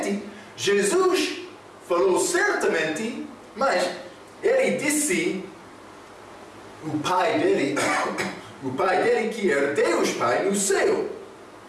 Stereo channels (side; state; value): both; identical; correlation 1.00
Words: Jesus falou certamente, mas ele disse o pai dele que era Deus Pai no céu.